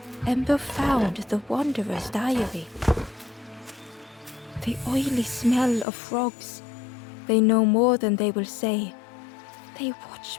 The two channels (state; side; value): drops out; right; at 5.9 s